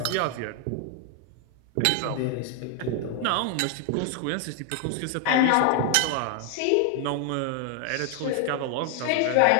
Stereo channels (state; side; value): different; both; correlation 0.00